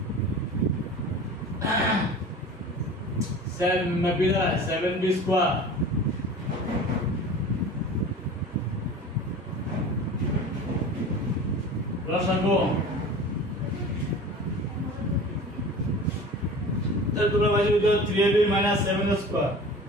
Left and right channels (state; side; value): normal; both; correlation 0.38